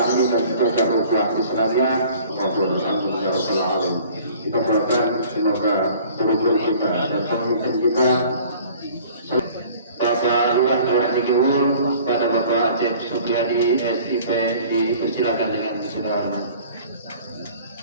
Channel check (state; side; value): inverted; both; correlation -0.49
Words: dan menjaga ukhuwah Islamiyah. Amin ya rabbal alamin. Kita doakan semoga guru-guru kita dan pemimpin kita, Bapak Luar Dikewul, pada Bapak Aceh Sugiadi SIP, dipersilakan dengan segala hormat.